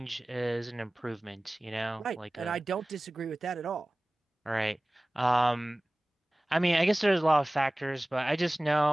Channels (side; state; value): both; normal; correlation 0.98